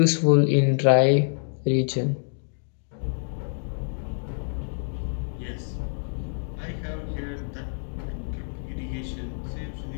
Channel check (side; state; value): right; silent; digital silence